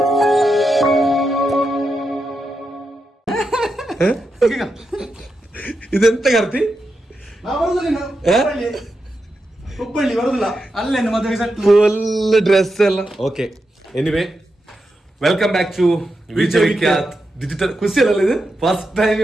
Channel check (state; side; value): normal; both; correlation 0.87